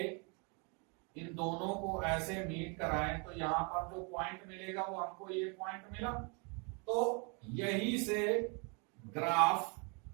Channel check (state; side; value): quieter; left; 33.8 dB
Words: इन दोनों को ऐसे मीट कराएं तो यहां पर जो पॉइंट मिलेगा वो हमको ये पॉइंट मिला। तो यहीं से ग्राफ